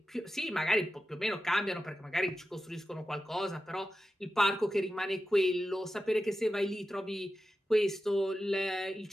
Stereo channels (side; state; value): both; normal; correlation 0.92